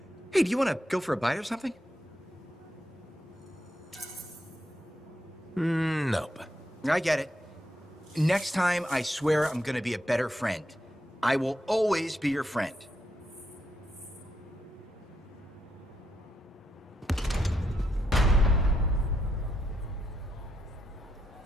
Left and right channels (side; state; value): both; normal; correlation 0.80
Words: hey, do you want to go for a bite or something? Nope. I get it. Next time, I swear I'm gonna be a better friend. I will always be your friend.